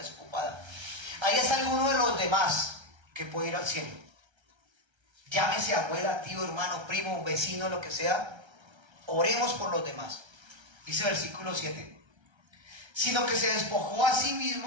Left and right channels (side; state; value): left; late; 1.3 ms